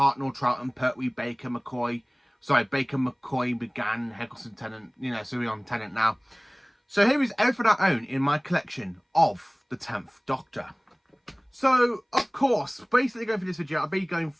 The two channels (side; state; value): both; identical; correlation 1.00